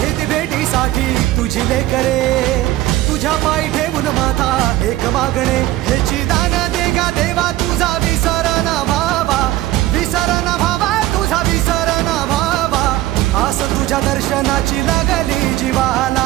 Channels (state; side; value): quieter; left; 15.8 dB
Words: भेटीसाठी तुझी लेकरे, तुझ्या पायी ठेवून माथा एक मागणे, ह्याची दान दे गा देवा तुझा विसर न भावा, विसर न भावा तुझा विसर न भावा, आस तुझ्या दर्शनाची लागली